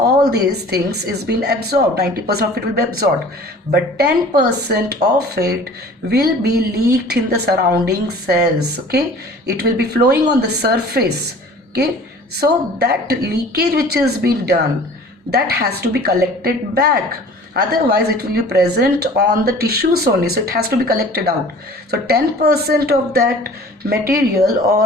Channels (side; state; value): both; normal; correlation 0.46